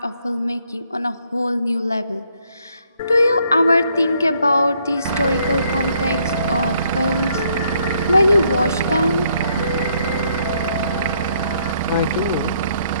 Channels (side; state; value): both; inverted; correlation -0.70